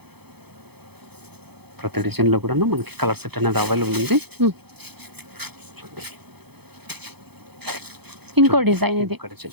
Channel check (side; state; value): left; late; 0.98 ms